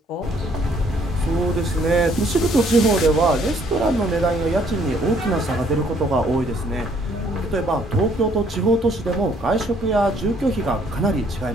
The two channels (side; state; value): both; normal; correlation 0.64